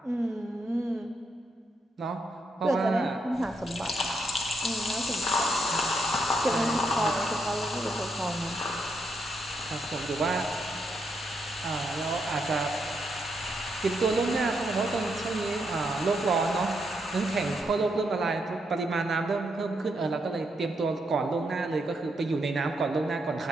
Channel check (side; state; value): both; normal; correlation 0.79